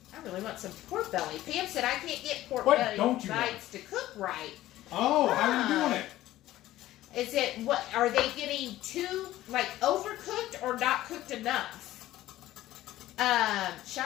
I really want some pork belly. Pam said, I can't get pork belly bites to cook right. Oh, how are you doing it? Is it, what, are they getting too, like, overcooked or not cooked enough?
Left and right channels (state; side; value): quieter; right; 15.0 dB